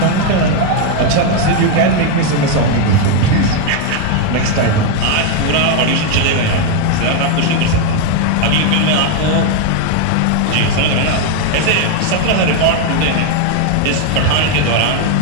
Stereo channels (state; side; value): different; both; correlation 0.01